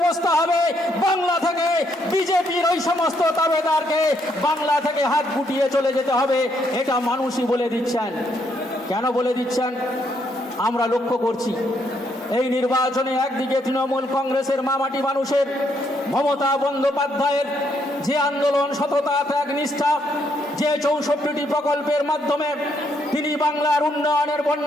হবে, বাংলা থেকে বিজেপির ওই সমস্ত দাবেদারকে বাংলা থেকে হাত গুটিয়ে চলে যেতে হবে। এটা মানুষই বলে দিচ্ছেন। কেন বলে দিচ্ছেন? আমরা লক্ষ্য করছি এই নির্বাচনে একদিকে তৃণমূল কংগ্রেসের মামাটি মানুষের মমতা বন্দ্যোপাধ্যায়ের যে আন্দোলন, সততা, ত্যাগ, নিষ্ঠা, যে 64টি প্রকল্পের মাধ্যমে তিনি বাংলার উন্নয়নের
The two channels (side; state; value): both; normal; correlation 0.74